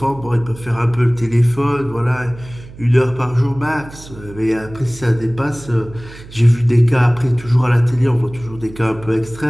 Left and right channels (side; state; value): right; noise; hum, 18 dB below the sound